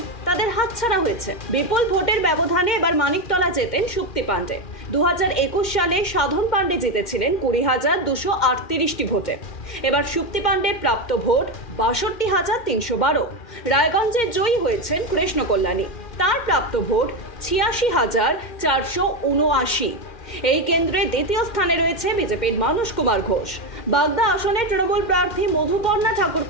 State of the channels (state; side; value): late; right; 2.1 ms